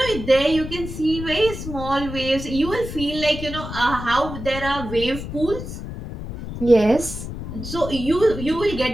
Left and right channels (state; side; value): noise; left; rumble, 9 dB below the sound